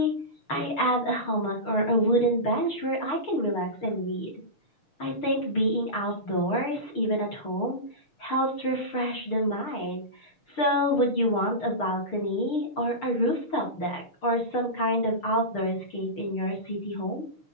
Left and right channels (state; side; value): late; right; 6.6 ms